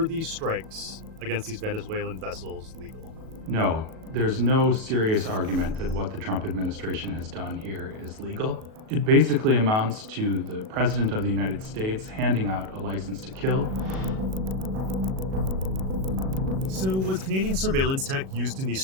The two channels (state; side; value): late; left; 37 ms